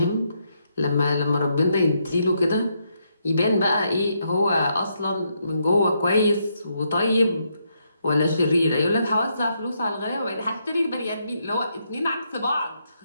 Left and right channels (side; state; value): both; inverted; correlation -0.78